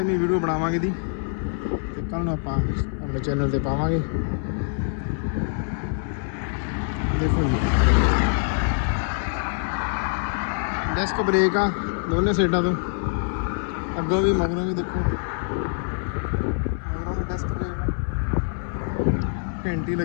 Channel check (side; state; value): right; silent; 62 dB below the other